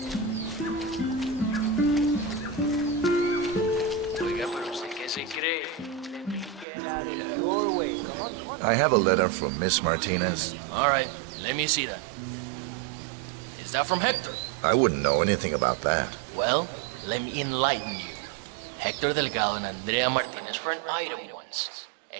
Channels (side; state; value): left; drops out; at 6.7 s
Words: I have a letter from Miss Martinez. All right, let me see that. Is that from Hector? I wouldn't know anything about that. Well, let me enlighten you. Hector Delgado and Andrea Martinez were an item once.